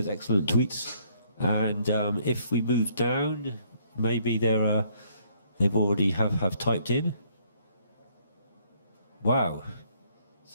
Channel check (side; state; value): both; inverted; correlation -0.66